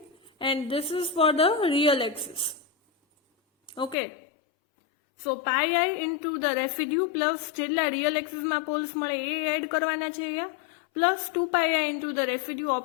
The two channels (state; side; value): drops out; right; at 4.0 s